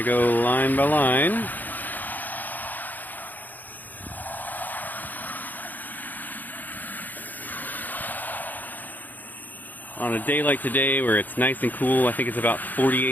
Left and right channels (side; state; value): right; late; 0.084 ms